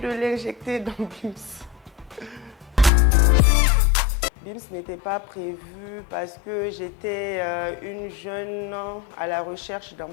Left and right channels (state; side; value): drops out; right; at 2.9 s